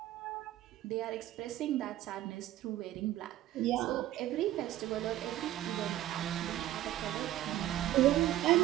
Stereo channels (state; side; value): quieter; left; 13.9 dB